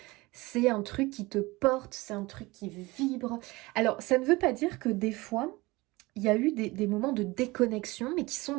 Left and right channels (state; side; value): quieter; left; 22.0 dB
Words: c'est un truc qui te porte, c'est un truc qui vibre. Alors, ça ne veut pas dire que des fois, il y a eu des moments de déconnexion, mais qui